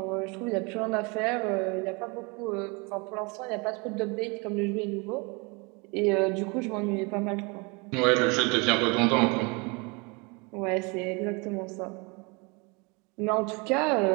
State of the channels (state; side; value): quieter; left; 29.5 dB